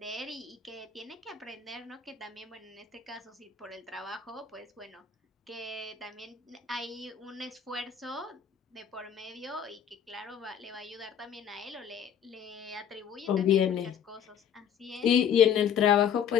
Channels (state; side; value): quieter; right; 8.3 dB